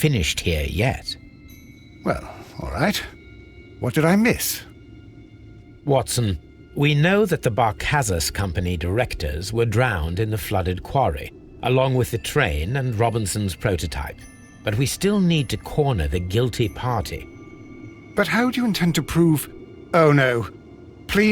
here yet. Well, all right. What did I miss? Watson, we know that the Barcazas Company directors were drowned in the flooded quarry, along with the train and Robinson's prototype. But we still need to corner the guilty party. But how do you intend to prove... Oh, no.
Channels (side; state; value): both; identical; correlation 1.00